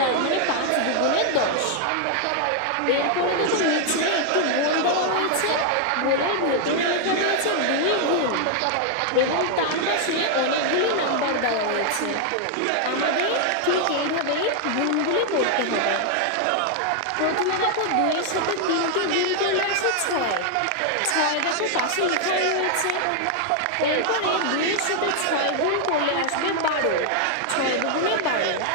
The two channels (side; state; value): both; different; correlation 0.00